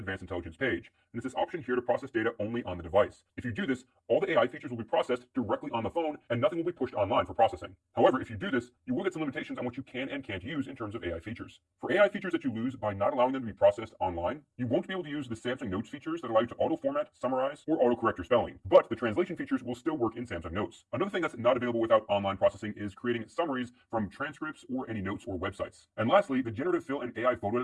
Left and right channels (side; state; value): both; identical; correlation 1.00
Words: Intelligence page, and it's this option here to process data only on the device. If you do this, all the AI features will be processed directly on the phone, and nothing will be pushed online for processing. However, if you do this, you will get some limitations on what you can and can't use in terms of AI features. For AI features that you lose by not allowing them to be processed online, you won't be able to use the Samsung Notes features that allow you to auto-format, summarize, or auto-correct your spelling. But the translation features will still work in Samsung Notes. Another thing that's not available without online processing is creating summaries from transcripts or any notes or websites. And lastly, the generative fill and AI photo